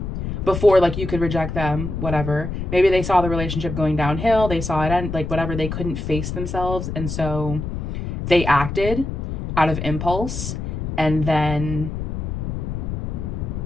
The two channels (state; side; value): noise; left; rumble, 4 dB below the sound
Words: before like you could reject them, whatever. Maybe they saw the relationship going downhill, they saw it end, like whatever, they couldn't face themselves, and so they acted out of impulse, and then